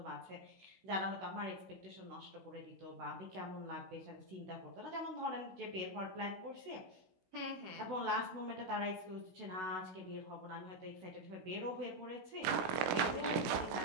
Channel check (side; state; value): left; late; 16 ms